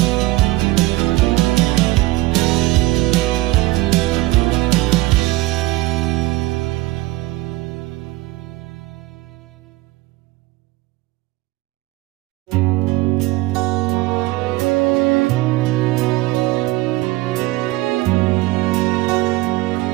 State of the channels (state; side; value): quieter; left; 19.5 dB